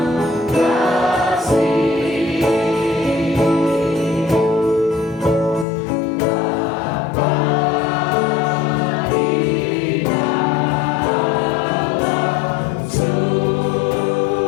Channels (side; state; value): right; drops out; at 5.7 s